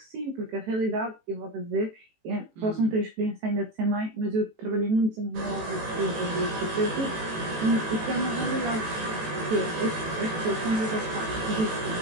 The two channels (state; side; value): late; left; 18 ms